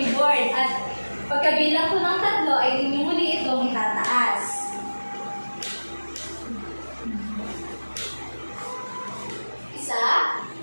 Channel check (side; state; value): both; inverted; correlation -1.00